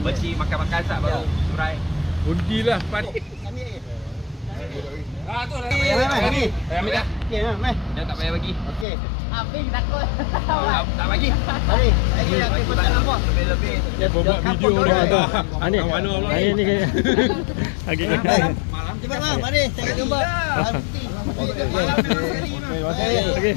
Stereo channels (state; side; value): drops out; right; at 8.8 s